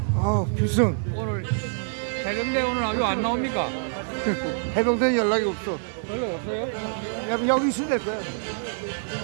필승. 오늘 해병대 오늘 아주 안 나옵니까? 해병대 연락이 없어. 연락 없어요? 여기 있으면 될 거야.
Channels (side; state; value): left; silent; digital silence